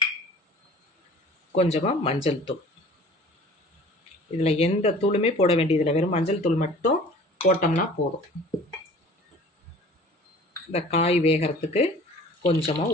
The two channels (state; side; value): normal; both; correlation 0.46